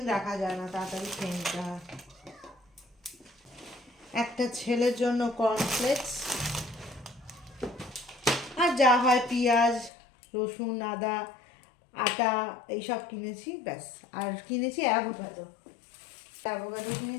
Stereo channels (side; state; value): right; drops out; at 9.9 s